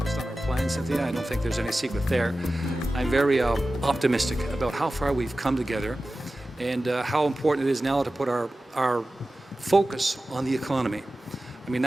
on our plan, Cynthia. I don't think there's any secret there. I'm very optimistic about how far we've come together and how important it is now to put our focus on the economy. I mean,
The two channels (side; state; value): both; normal; correlation 0.95